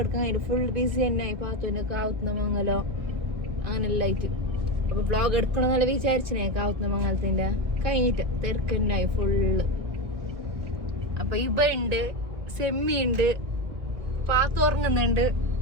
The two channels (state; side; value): late; left; 1.8 ms